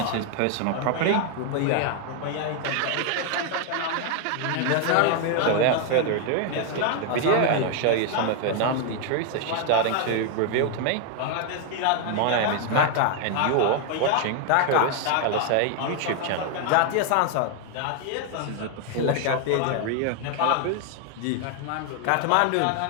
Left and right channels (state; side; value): different; both; correlation 0.00